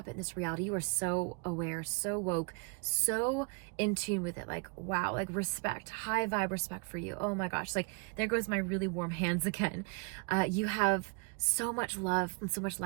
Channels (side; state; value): left; quieter; 35.3 dB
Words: in this reality. You are so aware, so woke, so in tune with it. Like, wow, like respect, high vibe respect for you. Oh my gosh, like there goes my really warm hands again. You have so much love and so much